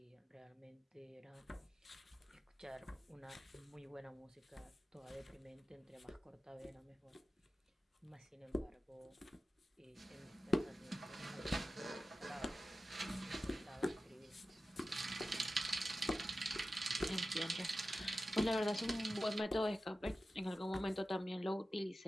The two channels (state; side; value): normal; both; correlation 0.93